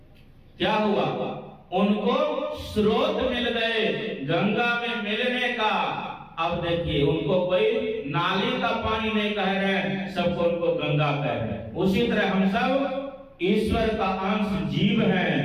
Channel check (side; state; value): both; identical; correlation 1.00